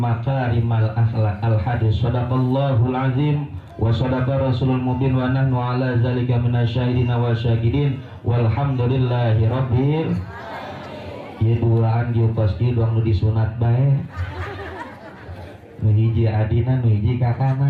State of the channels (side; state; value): both; identical; correlation 1.00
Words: akhlaq. Al-hadis. Shadaqallahul azim wa shadaqa rasulul mubin wa nahnu ala zalika minasyahidin wa syahidin walhamdulillahi rabbil ya duaan diu pasti doang nu disunat bae nu hiji adina nu hiji